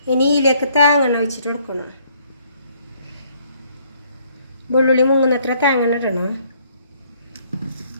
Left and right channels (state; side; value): inverted; both; correlation -0.65